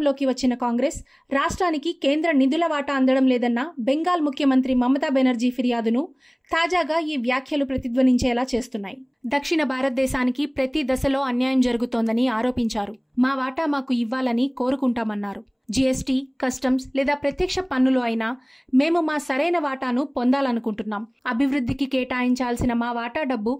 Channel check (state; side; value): identical; both; correlation 1.00